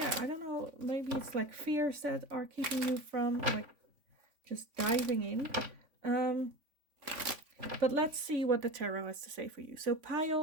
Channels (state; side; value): late; left; 3.5 ms